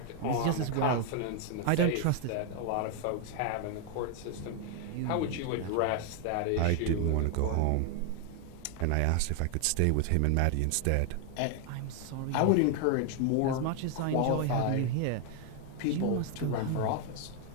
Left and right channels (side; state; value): both; different; correlation 0.00